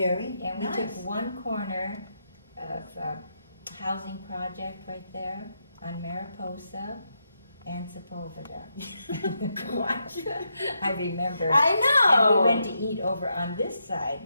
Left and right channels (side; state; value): both; inverted; correlation -0.82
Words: And we nice. took one corner of a housing project right there on Mariposa and Sepulveda. Gosh. I remember. I know. And we went to eat over on this side,